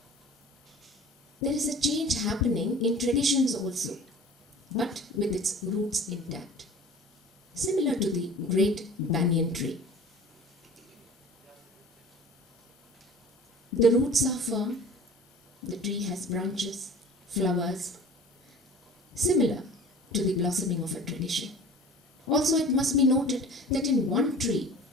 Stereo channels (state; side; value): normal; both; correlation 0.43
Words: There is a change happening in traditions also, but with its roots intact. Similar to the great banyan tree. The roots are firm, the tree has branches, flowers, similar to the blossoming of a tradition. Also, it must be noted that in one tree,